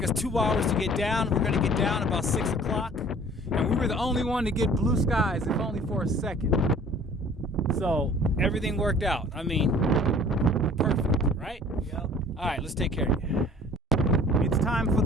us 2 hours to get down. We're gonna get down about 6 o'clock, and we were the only one to get blue skies, if only for a second. So everything worked out. I mean, perfect, right? Yep. All right, let's take care of you. It's time for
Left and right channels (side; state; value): both; normal; correlation 0.50